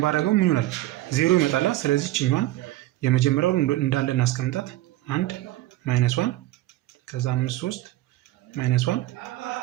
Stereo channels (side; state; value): left; quieter; 16.1 dB